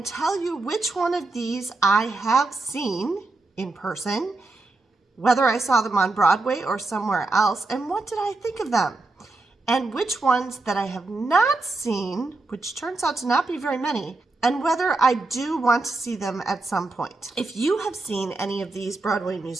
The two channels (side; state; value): left; quieter; 3.3 dB